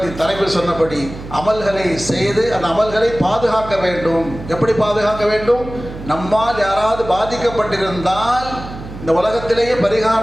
தலைவர் சொன்னபடி அமல்களை செய்து அந்த அமல்களை பாதுகாக்க வேண்டும். எப்படி பாதுகாக்க வேண்டும்? நம்மால் யாராவது பாதிக்கப்பட்டிருந்தால் இந்த உலகத்திலேயே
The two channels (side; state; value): right; noise; hum, 12 dB below the sound